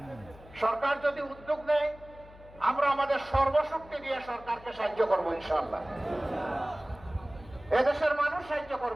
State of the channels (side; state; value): left; noise; hum, 21 dB below the sound